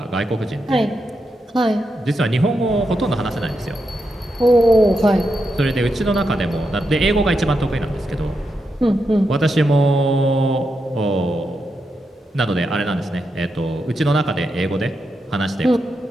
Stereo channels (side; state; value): both; normal; correlation 0.85